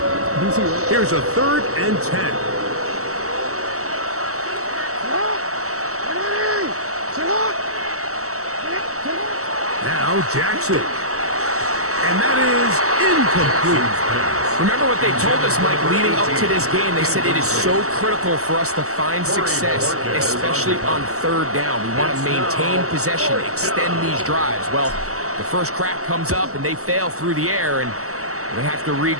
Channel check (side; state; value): left; late; 0.64 ms